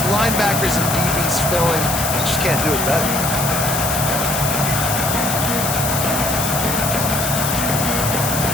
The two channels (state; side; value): noise; left; hiss, 2 dB below the sound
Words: Linebackers and DBs filling. You just can't do it better.